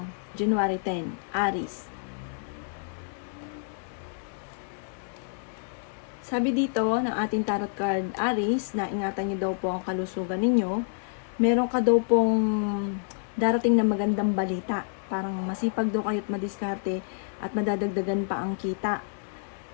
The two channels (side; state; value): right; silent; 59 dB below the other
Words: January 10. Aries. Sabi dito ng ating tarot card, Aries, na ingatan niyo daw po ang kalusugan ninyo. Meron ka daw pong darating na magandang balita. Parang masipag daw kayo at madiskarte at madadagdagan pa ang kita.